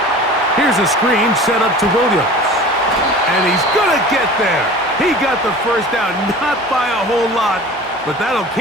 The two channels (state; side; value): normal; both; correlation 0.40